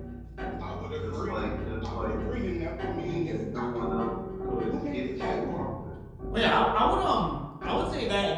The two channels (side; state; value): both; identical; correlation 1.00